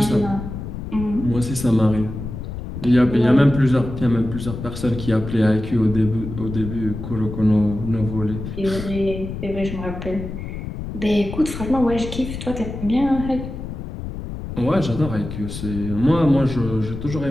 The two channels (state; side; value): noise; left; rumble, 8 dB below the sound